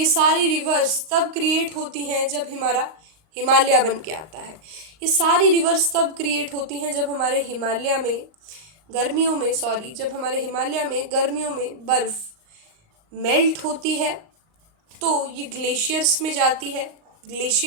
सारी रिवर्स तब क्रिएट होती हैं जब हमारा हिमालय बन के आता है. ये सारी रिवर्स तब क्रिएट होती हैं जब हमारे हिमालय में गर्मियों में, जब हमारे हिमालय में गर्मियों में बर्फ़ मेल्ट होती है तो ये ग्लेशियर्स में जाती है।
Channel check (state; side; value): late; left; 38 ms